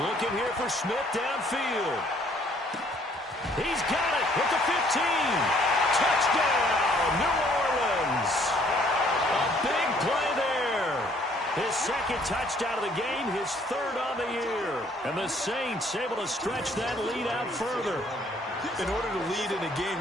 here for Smith downfield. He's got it at the 15. Touchdown, New Orleans. A big play there. His second touchdown of the game, his third on the year. And the Saints able to stretch that lead out further. In order to lead in a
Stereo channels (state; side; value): normal; both; correlation 0.62